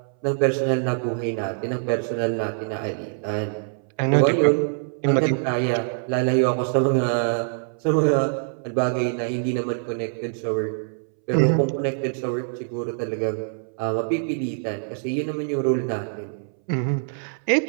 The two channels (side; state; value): left; silent; 62 dB below the other